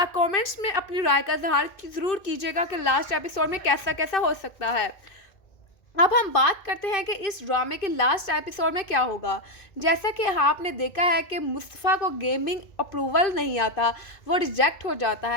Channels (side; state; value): right; late; 2.5 ms